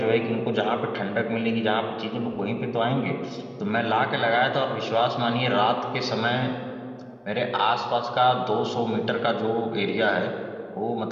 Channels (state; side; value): identical; both; correlation 1.00